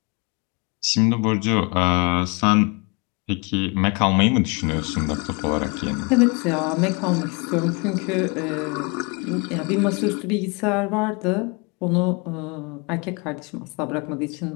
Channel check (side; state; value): right; quieter; 30.7 dB